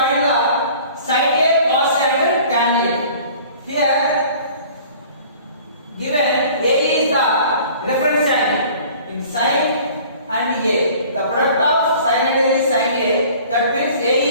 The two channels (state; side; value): inverted; both; correlation -0.49